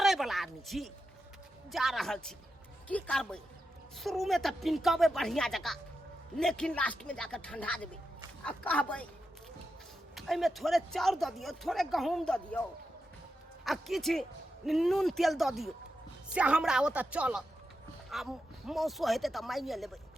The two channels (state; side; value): normal; both; correlation 0.88